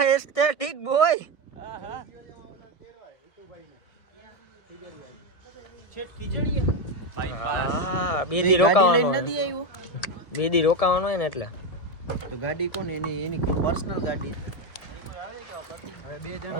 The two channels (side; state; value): right; late; 1.7 ms